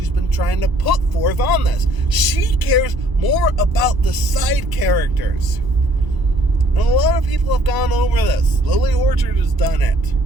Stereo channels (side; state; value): left; late; 1.0 ms